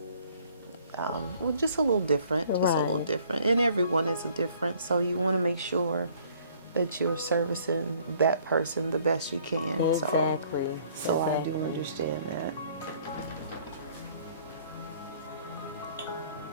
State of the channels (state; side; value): inverted; both; correlation -0.58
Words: well, just a little different, just a little Right. different, and everyone is different. So you want to make sure that you're servicing that person the best you can. Exactly. So I do understand that.